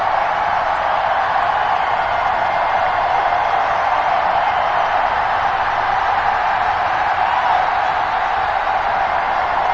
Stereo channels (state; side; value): identical; both; correlation 1.00